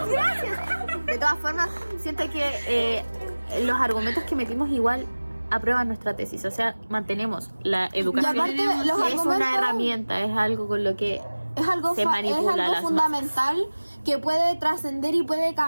gracias! De todas formas, siento que los argumentos que metimos igual aprueban nuestra tesis. O sea, mantenemos la educación. Y aparte, los es argumentos- una herramienta, es algo con lo que es algo, se manipula a las fundamental que puede trascender y puede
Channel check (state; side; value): inverted; both; correlation -1.00